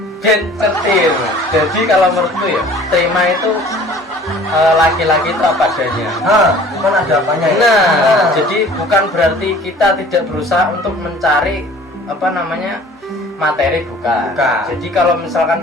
ben cetil. Jadi kalau menurutku ya, terima itu laki-laki itu apa adanya. Bukan ada apanya ya. Nah, jadi bukan berarti kita tidak berusaha untuk mencari apa namanya materi, bukan. Jadi kalau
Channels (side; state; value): both; normal; correlation 0.48